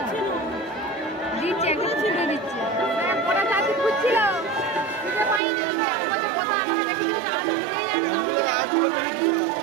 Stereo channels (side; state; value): left; drops out; at 5.4 s